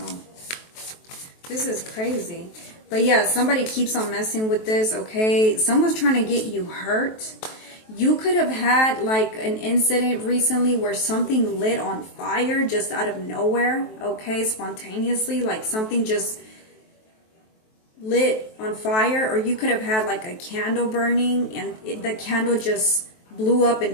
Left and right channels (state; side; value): late; right; 23 ms